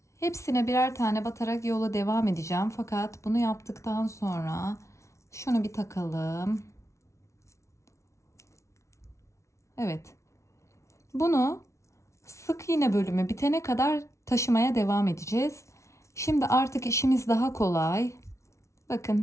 hepsine birer tane batarak yola devam edeceğim. Fakat bunu yaptıktan sonra şunu bir takalım. Evet. Bunu sık iğne bölümü bitene kadar taşımaya devam edeceğiz. Şimdi artık işimiz daha kolay.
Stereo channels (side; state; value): right; late; 0.14 ms